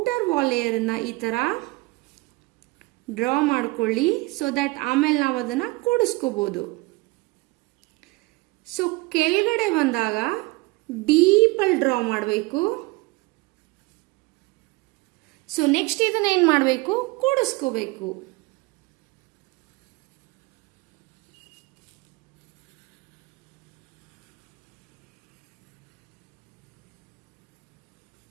wall layer ಅನ್ನ ಈ ತರ ಡ್ರಾ ಮಾಡ್ಕೊಳ್ಳಿ, ಸೊ ದಟ್ ಆಮೇಲೆ ನಾವು ಅದನ್ನ ಕೂಡಿಸ್ಕೋಬಹುದು. ಸೊ ಕೆಳಗಡೆ ಬಂದಾಗ ಡೀಪಲ್ಲಿ ಡ್ರಾ ಮಾಡಬೇಕು. ಸೊ ನೆಕ್ಸ್ಟ್ ಇದನ್ನ ಏನು ಮಾಡಬೇಕು, ಕೂಡಿಸ್ಕೋಬೇಕು.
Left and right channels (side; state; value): left; quieter; 23.6 dB